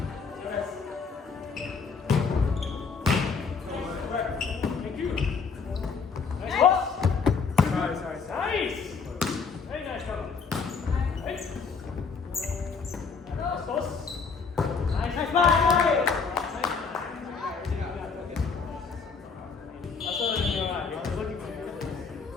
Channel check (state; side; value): quieter; right; 5.3 dB